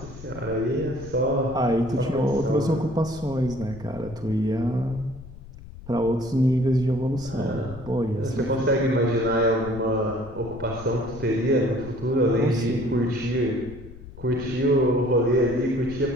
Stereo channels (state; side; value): noise; left; rumble, 16 dB below the sound